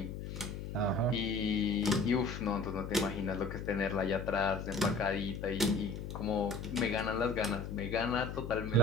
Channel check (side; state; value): left; noise; hum, 7 dB below the sound